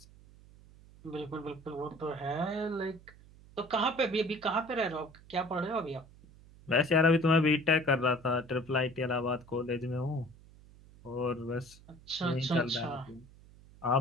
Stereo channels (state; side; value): noise; right; hum, 23 dB below the sound